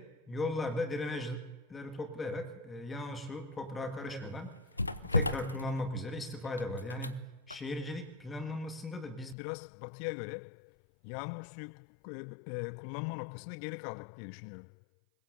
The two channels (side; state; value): right; drops out; at 9.3 s